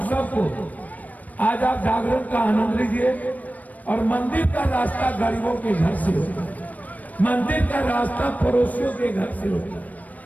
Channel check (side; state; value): right; late; 0.074 ms